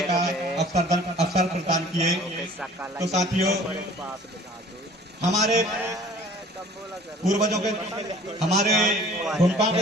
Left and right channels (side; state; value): both; normal; correlation 0.50